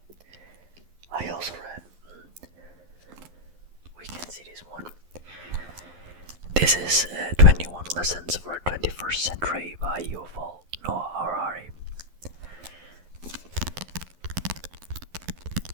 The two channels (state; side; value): late; left; 11 ms